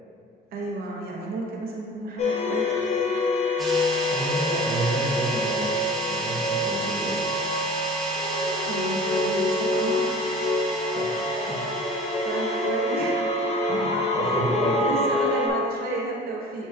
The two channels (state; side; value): normal; both; correlation 0.41